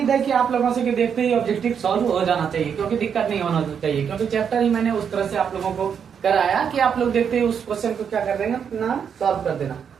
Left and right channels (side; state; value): left; quieter; 7.4 dB